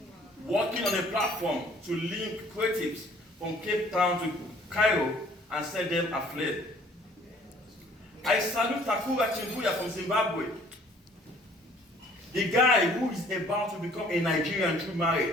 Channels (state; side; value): normal; both; correlation 0.56